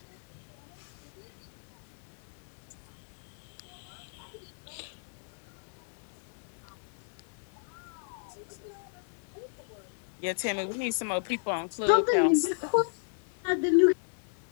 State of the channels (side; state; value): right; silent; digital silence